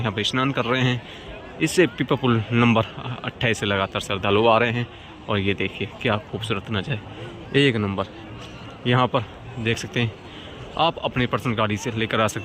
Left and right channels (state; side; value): identical; both; correlation 1.00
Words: पर स्नान कर रहे हैं। इससे पीपा पुल नंबर 28 से लगातार श्रद्धालु आ रहे हैं। और ये देखिए क्या खूबसूरत नज़ारे, एक नंबर। यहाँ पर देख सकते हैं आप अपनी पर्सनल गाड़ी से लेकर आ